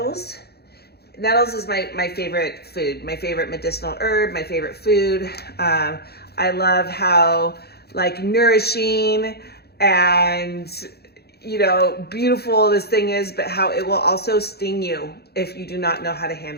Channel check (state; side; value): late; right; 0.47 ms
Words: Nettles is my favorite food, my favorite medicinal herb, my favorite food. I love how like nourishing and, you know, beautiful this thing is, but how it will also sting you if you do not know how to